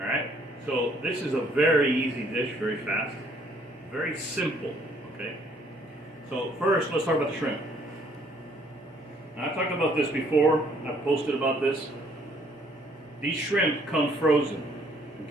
so this is a very easy dish, very fast, very simple, okay? So first, let's talk about the shrimp. Now, I've talked about this before, I've posted about this. These shrimp come frozen,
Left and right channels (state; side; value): normal; both; correlation 0.63